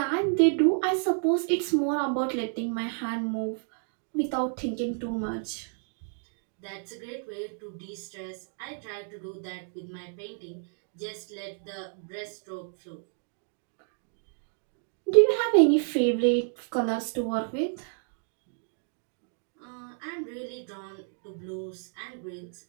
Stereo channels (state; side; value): silent; left; 58 dB below the other